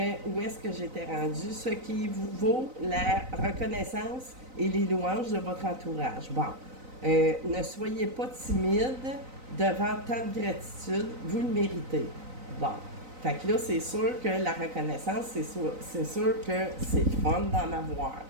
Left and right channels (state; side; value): late; left; 3.9 ms